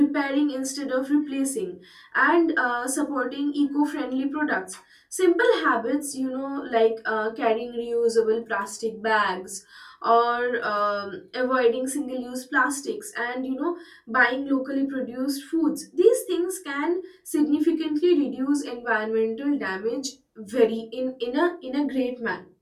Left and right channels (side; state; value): both; identical; correlation 1.00